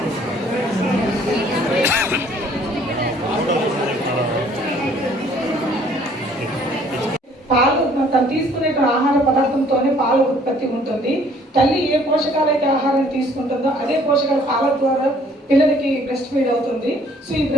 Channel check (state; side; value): normal; both; correlation 0.59